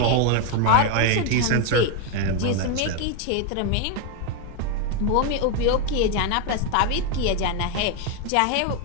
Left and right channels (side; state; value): both; different; correlation 0.02